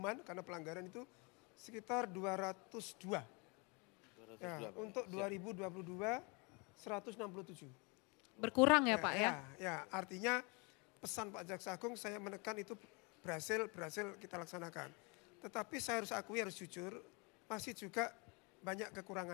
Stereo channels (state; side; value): quieter; right; 30.7 dB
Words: karena pelanggaran itu sekitar 202. Ya, untuk 2022 167. Berkurang ya Pak ya? Ya, artinya pesan Pak Jaksa Agung saya menekan itu berhasil kita laksanakan. Tetapi saya harus akui, harus jujur, masih juga banyak